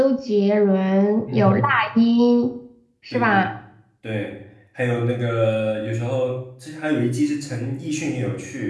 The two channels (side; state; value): both; identical; correlation 1.00